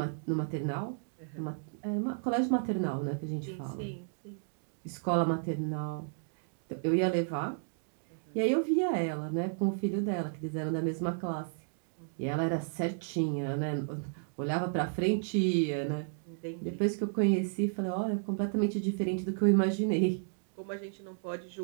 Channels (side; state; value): left; silent; digital silence